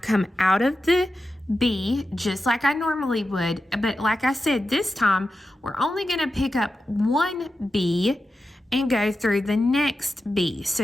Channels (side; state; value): both; normal; correlation 0.91